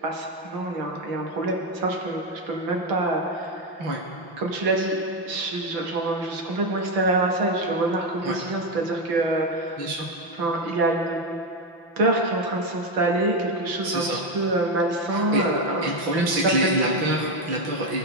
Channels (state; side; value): late; left; 5.9 ms